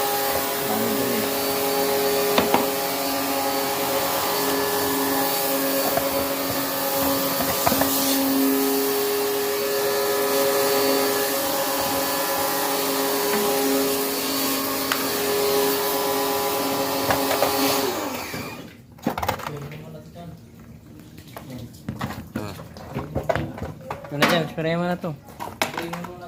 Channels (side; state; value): both; identical; correlation 1.00